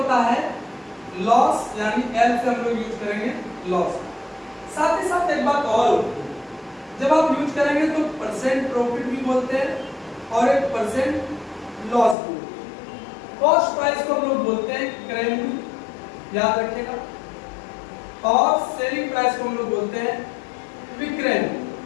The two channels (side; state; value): right; drops out; at 12.2 s